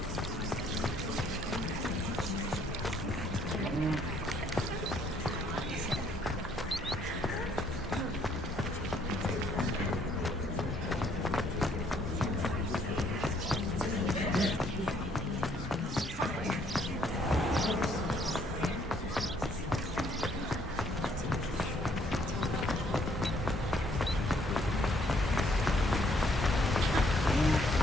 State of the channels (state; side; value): normal; both; correlation 0.66